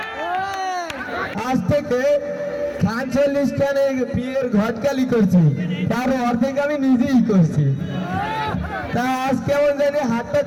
আজ থেকে ৪৫ খানে বিয়ের ঘটকালি করছি, তার অর্ধেক আমি নিজেই করছি। তা আজ কেমন জানি হাতটা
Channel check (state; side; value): identical; both; correlation 1.00